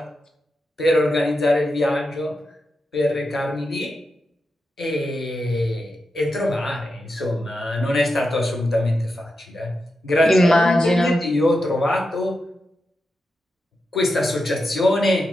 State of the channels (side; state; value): both; normal; correlation 0.88